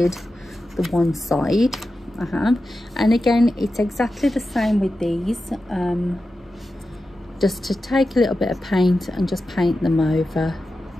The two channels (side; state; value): both; normal; correlation 0.92